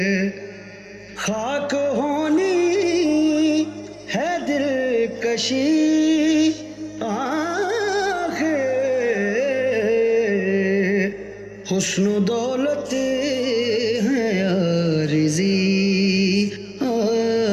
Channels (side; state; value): both; identical; correlation 1.00